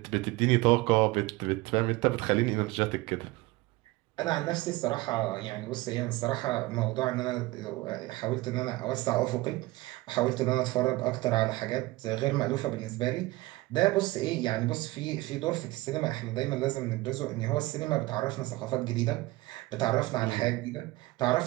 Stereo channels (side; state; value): left; quieter; 20.0 dB